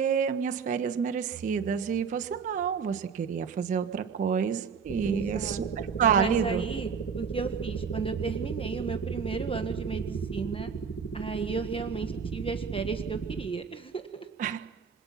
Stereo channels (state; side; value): quieter; left; 6.1 dB